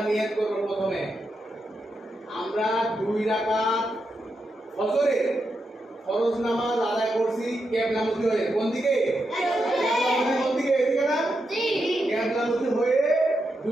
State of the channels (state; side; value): normal; both; correlation 0.85